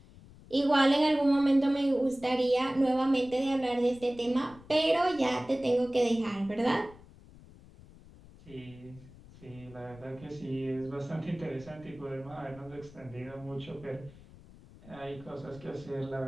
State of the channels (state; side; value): noise; left; rumble, 21 dB below the sound